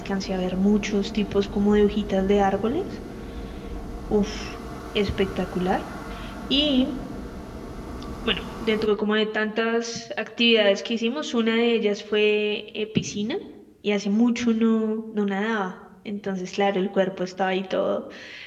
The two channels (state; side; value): identical; both; correlation 1.00